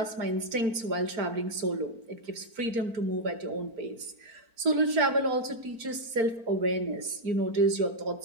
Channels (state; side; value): late; left; 4.4 ms